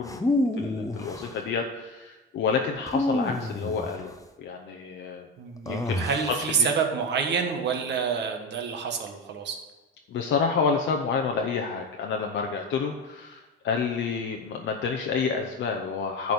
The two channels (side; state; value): both; normal; correlation 0.19